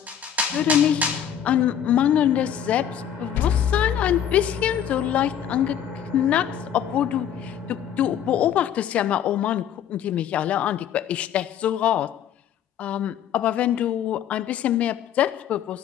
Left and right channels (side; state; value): right; quieter; 9.5 dB